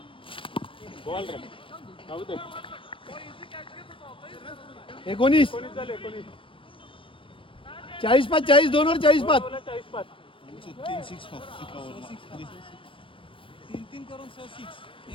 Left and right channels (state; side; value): late; right; 0.25 ms